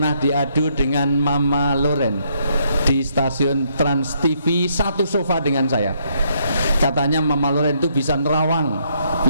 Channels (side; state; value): both; inverted; correlation -0.72